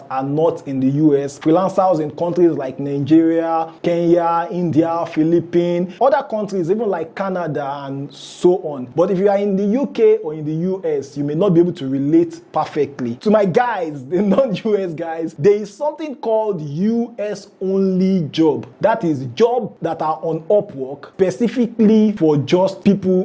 are not in the US. Freelancers in countries like Nigeria, Kenya, India, Philippines, other countries, even like Canada and so on. But if you are in the UK or in the US, you may not be able to relate perfectly. To my guys, the non-US guys, there is something called US only job. That is jobs that are on Upwork specifically for just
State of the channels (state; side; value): identical; both; correlation 1.00